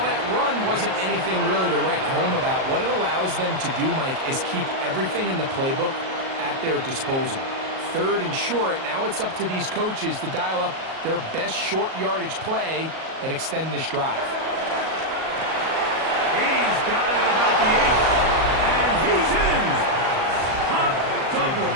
that run wasn't anything really to write home about, what it allows them to do, Mike, is keep everything in the playbook at their disposal. Third and short, now it's up to these coaches to dial up their best short yardage play and extend this drive. He's got it at about the 8, and he's in. Hop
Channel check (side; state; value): left; late; 38 ms